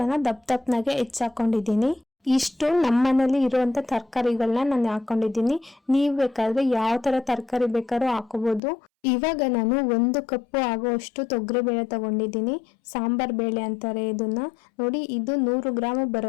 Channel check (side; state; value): right; drops out; at 8.6 s